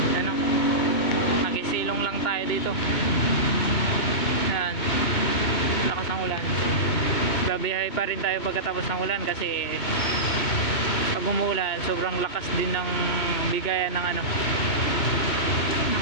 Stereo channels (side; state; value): right; late; 2.2 ms